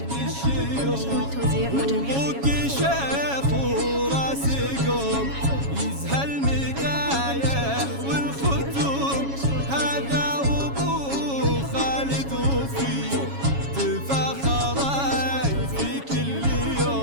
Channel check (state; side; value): late; left; 7.2 ms